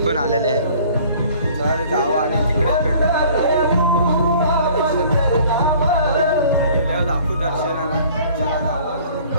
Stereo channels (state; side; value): inverted; both; correlation -0.52